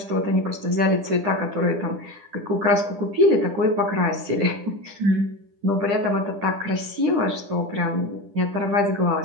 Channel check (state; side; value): late; left; 10 ms